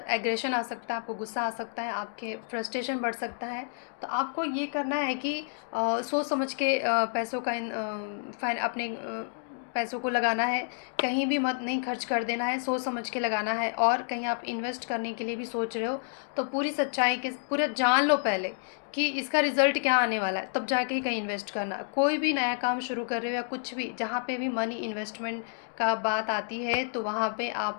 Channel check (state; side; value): silent; right; digital silence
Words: एग्रेशन आ सकता है, आपको गुस्सा आ सकता है, आपके फ्रस्ट्रेशन बढ़ सकता है। तो आपको ये करना है कि सोच समझ के पैसों का अपने पैसों को लगाना है। कहीं भी मत नहीं खर्च कर देना है, सोच समझ के लगाना है। और कहीं आप इन्वेस्ट करने के लिए भी सोच रहे हो तो पूरी सच्चाई के पूरा जान लो पहले कि इसका रिज़ल्ट क्या आने वाला है, तब जाके ही कहीं इन्वेस्ट करना। कोई भी नया काम शुरू कर रहे हो या कुछ भी, जहाँ पे भी मनी इन्वेस्टमेंट का बात आती है तो वहाँ पे